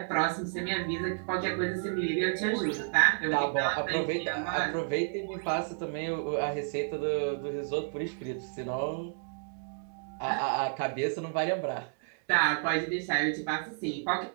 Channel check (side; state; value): left; silent; digital silence